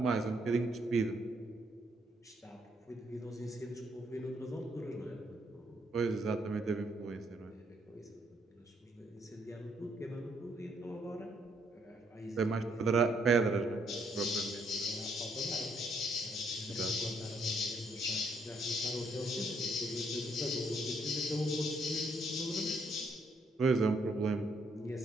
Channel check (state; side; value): normal; both; correlation 0.71